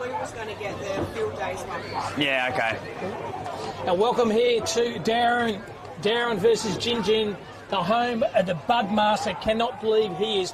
We was going to get the field days one. Yeah, okay. Now welcome here to Dowerin versus Gingin, the home of the Budmaster. Cannot believe he is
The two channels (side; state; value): both; identical; correlation 1.00